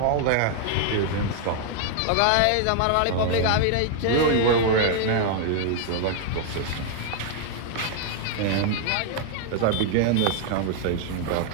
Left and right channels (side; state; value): both; different; correlation 0.00